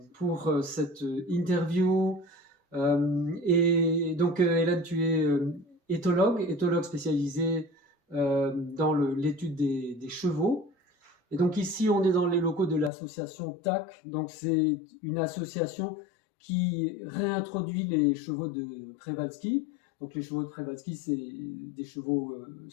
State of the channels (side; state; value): right; drops out; at 12.9 s